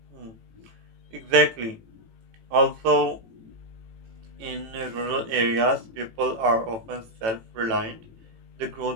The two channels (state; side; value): late; left; 18 ms